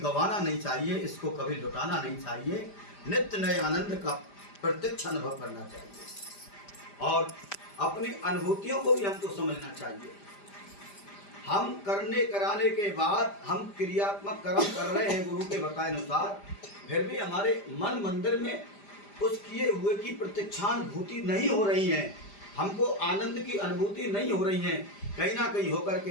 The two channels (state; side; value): late; right; 5.0 ms